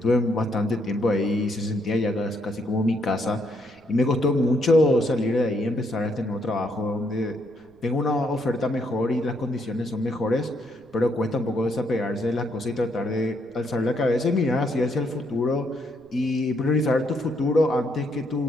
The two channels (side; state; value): right; noise; rumble, 30 dB below the sound